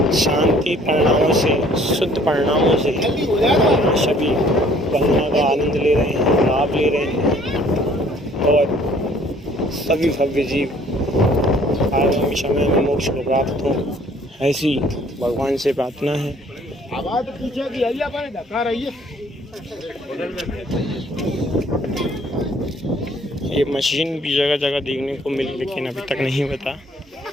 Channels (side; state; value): both; normal; correlation 0.58